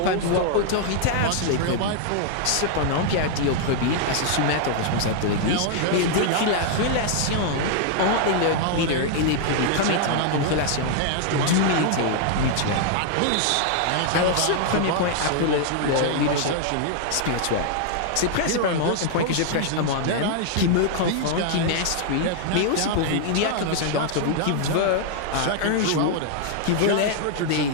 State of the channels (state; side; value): different; both; correlation -0.01